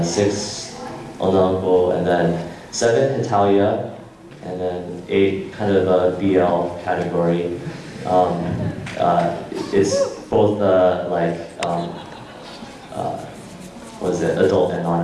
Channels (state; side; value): identical; both; correlation 1.00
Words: 6 onanko, and then 7 Hitalia, and then 8 kind of a BL category. It's both adult and